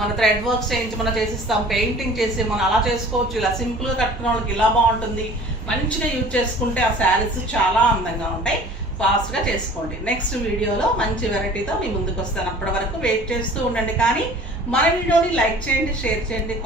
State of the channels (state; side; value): normal; both; correlation 0.47